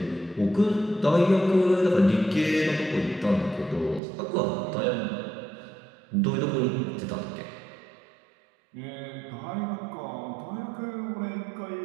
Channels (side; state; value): left; drops out; at 4.0 s